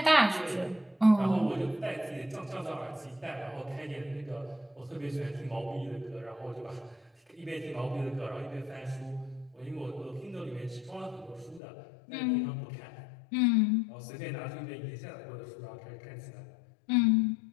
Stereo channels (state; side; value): drops out; right; at 11.6 s